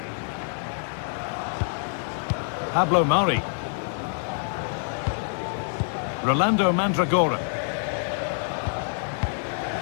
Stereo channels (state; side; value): silent; right; digital silence